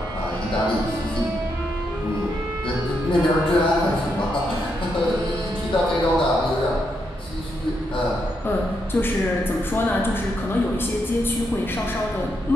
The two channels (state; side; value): normal; both; correlation 0.80